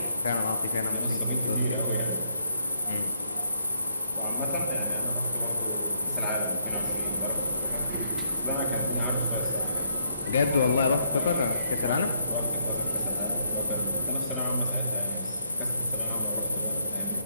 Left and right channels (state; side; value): inverted; both; correlation -0.73